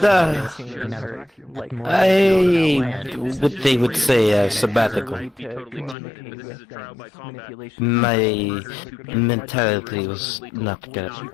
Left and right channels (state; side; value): drops out; right; at 6.0 s